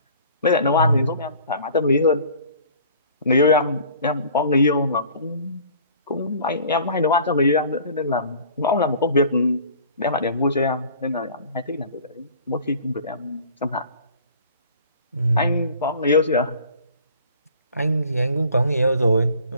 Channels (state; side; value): inverted; both; correlation -0.48